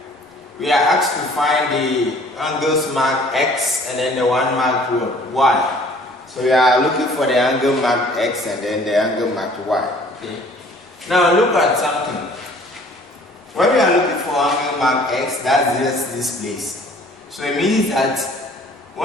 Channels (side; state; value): both; normal; correlation 0.54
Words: we are asked to find the angles marked X and then the one marked Y. So we are looking for the angle marked X and then the angle marked Y. Okay. Now look at something. When we are looking for angle marked X, that's just this place. So it means that